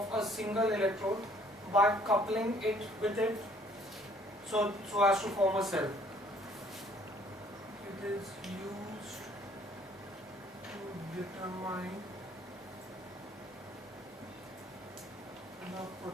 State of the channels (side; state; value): both; normal; correlation 0.60